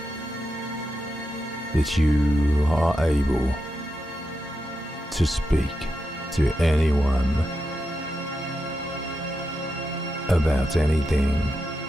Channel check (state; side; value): normal; both; correlation 0.87